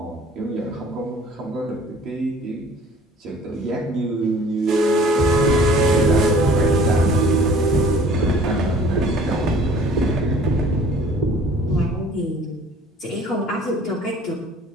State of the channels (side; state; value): both; normal; correlation 0.51